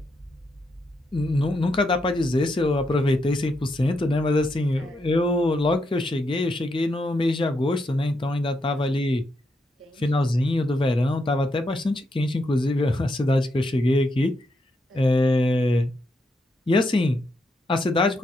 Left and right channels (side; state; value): both; normal; correlation 0.81